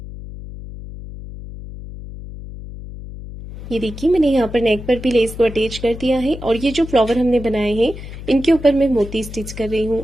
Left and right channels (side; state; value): left; noise; hum, 12 dB below the sound